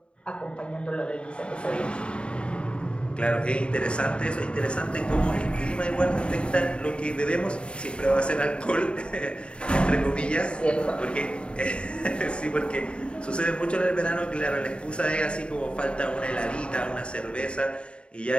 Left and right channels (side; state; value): right; late; 0.055 ms